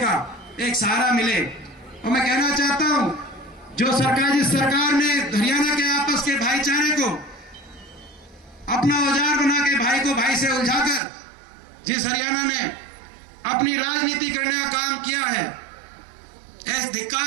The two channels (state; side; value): drops out; left; at 11.0 s